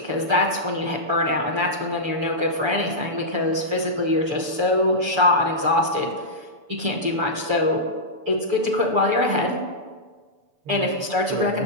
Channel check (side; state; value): left; late; 6.9 ms